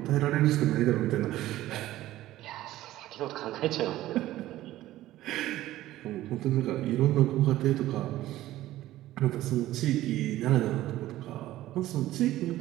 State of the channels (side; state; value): left; quieter; 15.1 dB